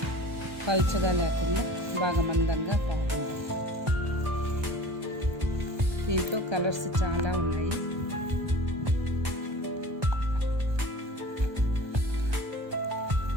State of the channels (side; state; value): left; late; 1.2 ms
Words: పల్చగా లేకుండా బాగా మందంగా బాగుంది. దీంట్లో కలర్స్ చాలా ఉన్నాయి.